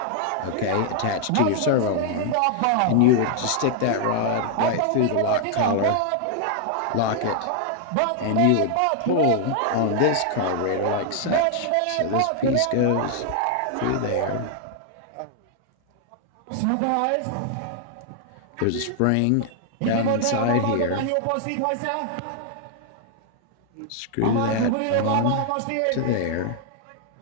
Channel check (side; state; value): both; different; correlation -0.01